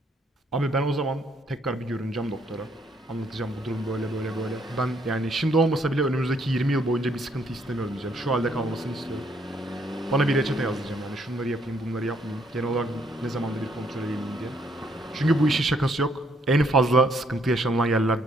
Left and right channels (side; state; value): both; normal; correlation 0.69